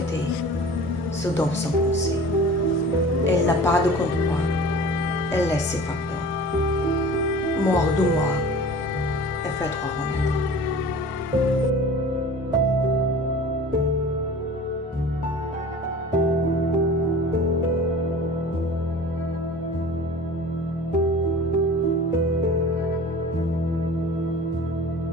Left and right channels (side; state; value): both; normal; correlation 0.41